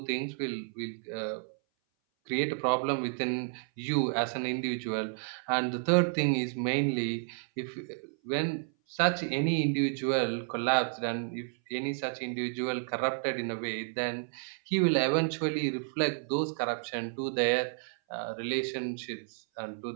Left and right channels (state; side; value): silent; left; 57 dB below the other